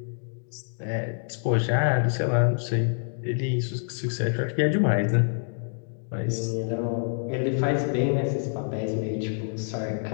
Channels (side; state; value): right; silent; digital silence